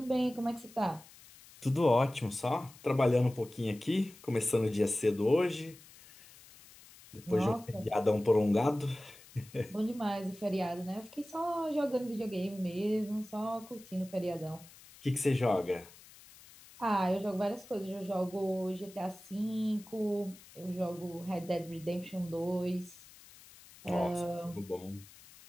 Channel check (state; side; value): noise; left; hiss, 21 dB below the sound